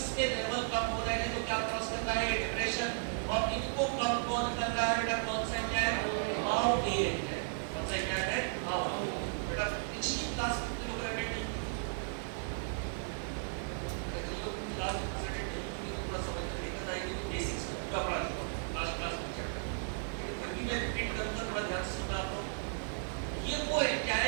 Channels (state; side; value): silent; left; 54 dB below the other